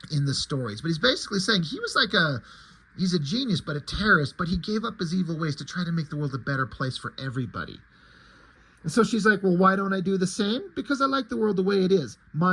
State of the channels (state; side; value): identical; both; correlation 1.00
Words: in the stories. But he's basically saying he was like he's a genius, but a terrorist, but he gave up his evil ways to try to make the world a better place for everybody. And so she's like, well, why don't I do the same? Because I like the world the way it is,